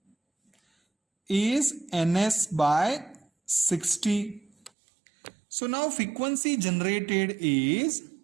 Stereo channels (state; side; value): drops out; left; at 4.7 s